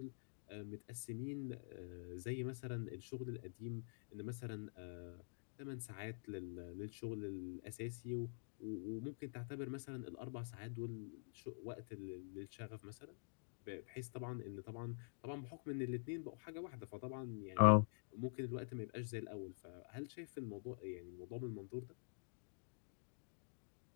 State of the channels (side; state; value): right; silent; digital silence